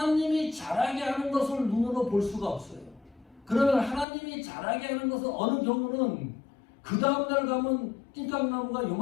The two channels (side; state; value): right; drops out; at 4.0 s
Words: 자라게 하는 것을 눈으로 볼 수가 없어요. 그러면 하나님이 자라게 하는 것은 어느 경우는 그 다음날 가면 낑깡나무가